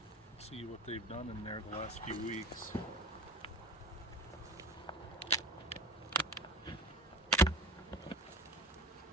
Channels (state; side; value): normal; both; correlation 0.35